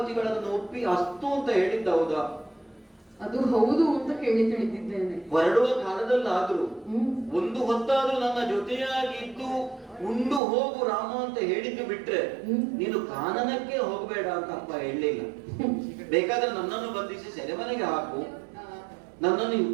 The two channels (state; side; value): drops out; left; at 10.4 s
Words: ಒಪ್ಪಿ ಅಸ್ತು ಅಂತ ಹೇಳಿದ್ದ ಹೌದಾ? ಅದು ಹೌದು ಅಂತ ಕೇಳಿ ತಿಳಿದಿದ್ದೇನೆ. ಹೊರಡುವ ಕಾಲದಲ್ಲಾದ್ರೂ ಒಂದು ಹೊತ್ತಾದ್ರೂ ನನ್ನ ಜೊತೆಯಾಗಿದ್ದು ಉಂಡು ಹೋಗು ರಾಮ ಅಂತ ಹೇಳಿದ್ದು ಬಿಟ್ರೆ ನೀನು ಕಾನನಕ್ಕೆ ಹೋಗಬೇಡ ಅಂತ ಅಪ್ಪ ಹೇಳಲಿಲ್ಲ. ಬೇಕಾದ್ರೆ ನನ್ನನ್ನು ಬಂಧಿಸಿ ಸೆರೆಮನೆಗೆ ಹಾಕು, ನನ್ನನ್ನು